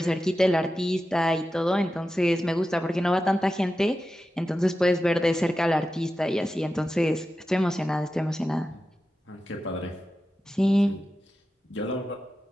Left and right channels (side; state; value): both; normal; correlation 0.92